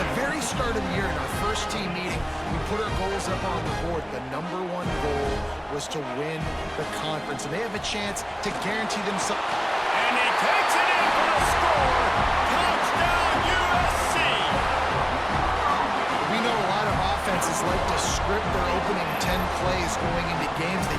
very start of the year in our first team meeting, we put our goals up on the board. The number one goal was to win the conference, and they have a chance to guarantee themselves. And he takes it in for the score. Touchdown, USC! We know a lot of offenses like to script their opening 10 plays going into games.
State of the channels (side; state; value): both; identical; correlation 1.00